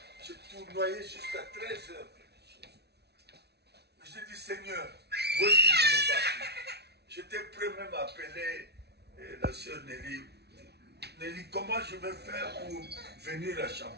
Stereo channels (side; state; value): left; late; 0.49 ms